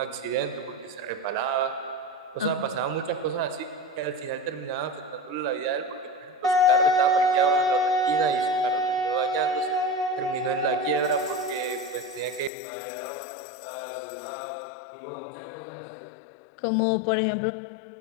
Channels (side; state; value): right; drops out; at 12.5 s